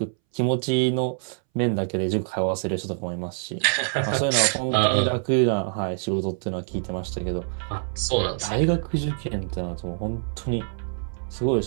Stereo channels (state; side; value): silent; left; 61 dB below the other